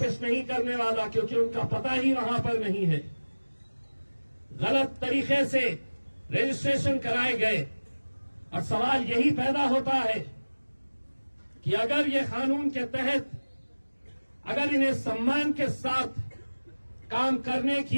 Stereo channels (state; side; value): inverted; both; correlation -1.00